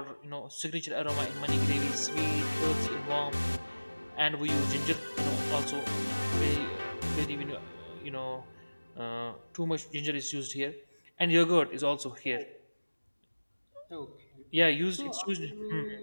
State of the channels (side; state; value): both; inverted; correlation -1.00